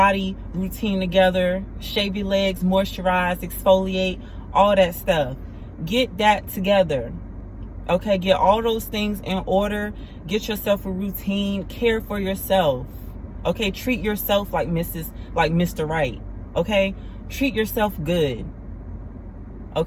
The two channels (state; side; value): identical; both; correlation 1.00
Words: routine together. Shave your legs, moisturize, exfoliate, all that stuff. Get that together. Okay, get all those things in order. Get yourself a routine. Care for yourself. Okay, treat yourself like Mr. Right. Okay, treat yourself good.